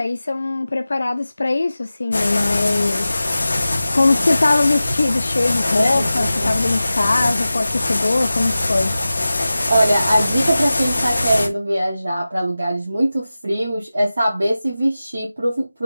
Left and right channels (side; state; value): both; inverted; correlation -0.95